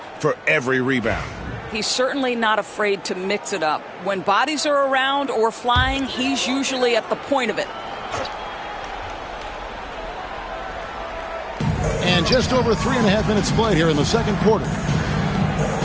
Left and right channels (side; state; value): both; identical; correlation 1.00